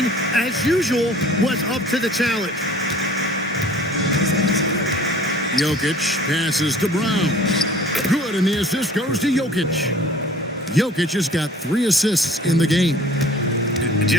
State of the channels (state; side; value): normal; both; correlation 0.49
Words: as usual, was up to the challenge. Jokic passes to Brown. Good, and the assist goes to Jokic. Jokic has got 3 assists in the game.